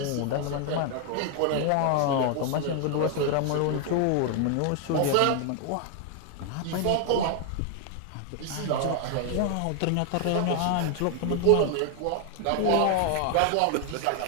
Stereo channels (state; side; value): different; both; correlation 0.00